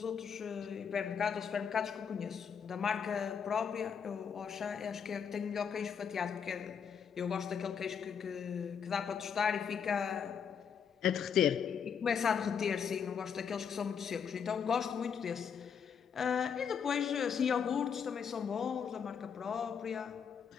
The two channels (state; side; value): quieter; right; 7.1 dB